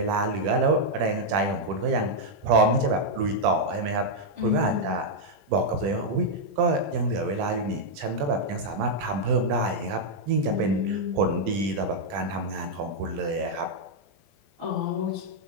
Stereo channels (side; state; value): left; late; 20 ms